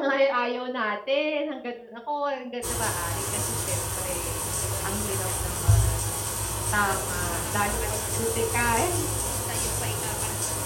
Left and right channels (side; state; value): both; identical; correlation 1.00